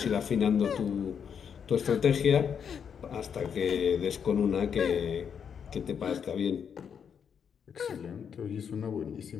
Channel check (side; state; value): right; quieter; 7.4 dB